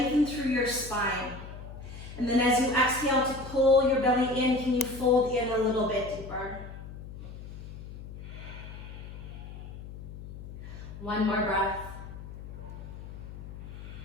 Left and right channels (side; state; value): left; noise; hum, 12 dB below the sound